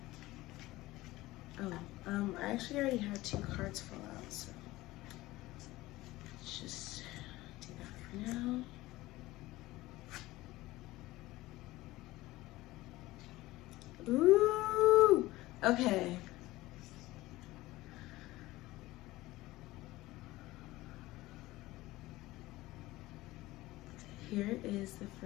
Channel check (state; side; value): quieter; right; 18.3 dB